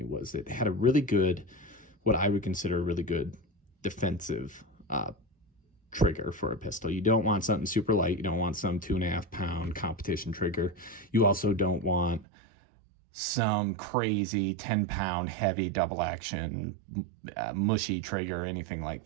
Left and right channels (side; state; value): left; drops out; at 12.2 s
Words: was it had a really good, what I would consider a really good defensive trigger for a pistol. You don't want something super light. You don't want some 2.5 pound competition trigger. You also don't want some crazy 10-pound heavy double action mushy trigger or anything like